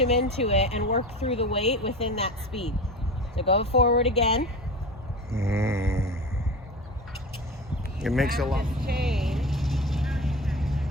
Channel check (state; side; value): normal; both; correlation 0.30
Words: into it and work through the weight within that speed. So go forward again. It makes a lot. Change.